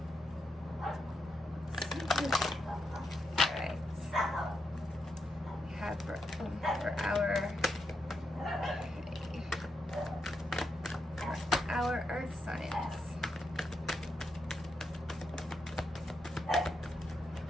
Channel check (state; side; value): normal; both; correlation 0.83